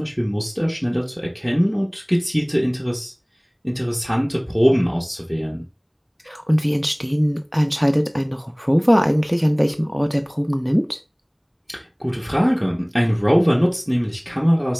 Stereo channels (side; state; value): both; identical; correlation 1.00